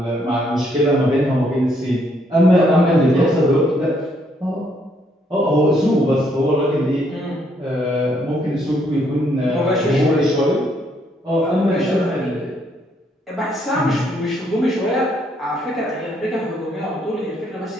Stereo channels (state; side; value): normal; both; correlation 0.71